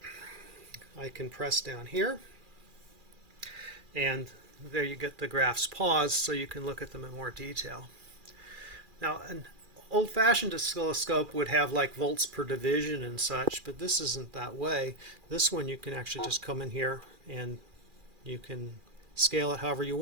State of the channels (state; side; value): late; left; 2.4 ms